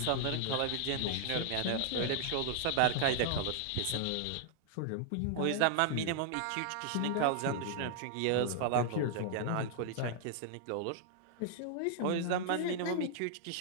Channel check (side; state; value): both; different; correlation -0.01